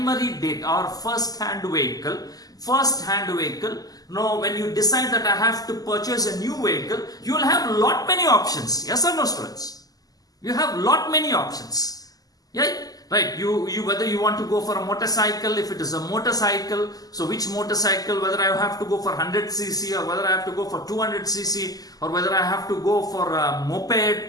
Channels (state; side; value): late; right; 0.18 ms